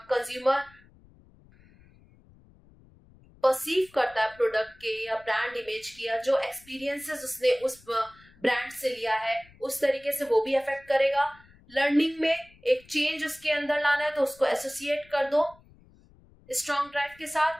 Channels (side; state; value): left; noise; rumble, 27 dB below the sound